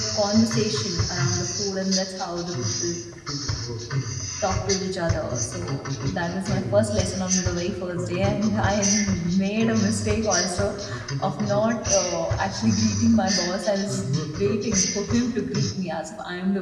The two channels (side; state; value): both; identical; correlation 1.00